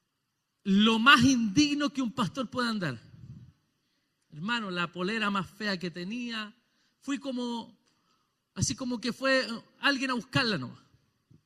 lo más indigno que un pastor puede andar. Hermano, la polera más fea que tenía. Fui así como que fue alguien a buscarla nomás.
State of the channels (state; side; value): identical; both; correlation 1.00